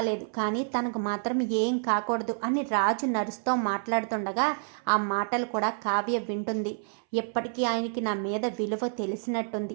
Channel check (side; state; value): left; silent; 59 dB below the other